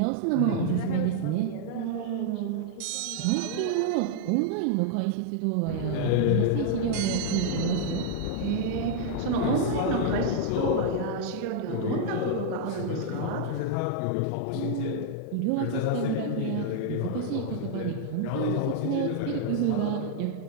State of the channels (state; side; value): different; both; correlation -0.01